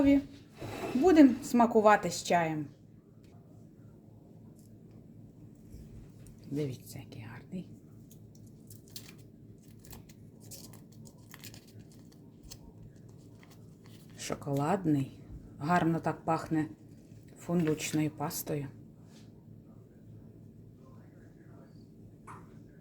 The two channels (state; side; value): identical; both; correlation 1.00